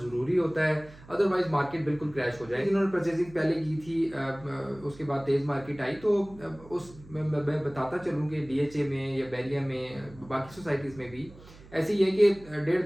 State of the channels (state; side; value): noise; right; hum, 21 dB below the sound